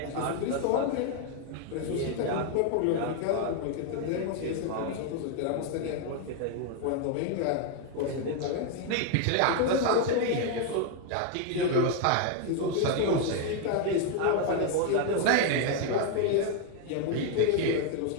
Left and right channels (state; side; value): different; both; correlation 0.01